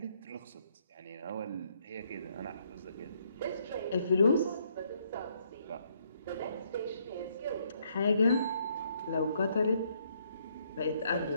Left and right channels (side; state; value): both; inverted; correlation -0.70